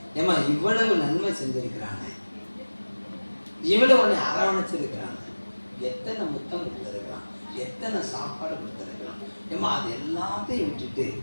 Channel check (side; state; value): both; inverted; correlation -1.00